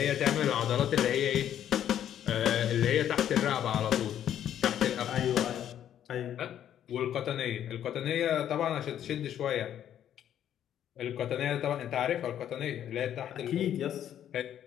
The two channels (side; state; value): right; quieter; 10.4 dB